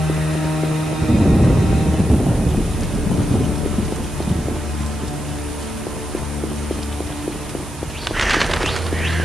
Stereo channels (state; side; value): noise; right; hiss, 19 dB below the sound